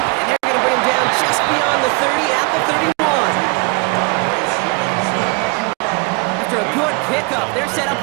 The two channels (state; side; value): quieter; left; 29.7 dB